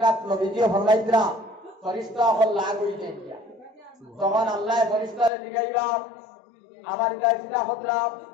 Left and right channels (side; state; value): right; drops out; at 5.3 s